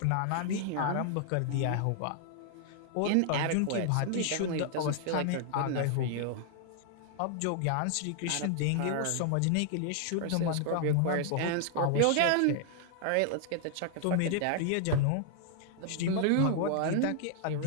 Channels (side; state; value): both; different; correlation 0.00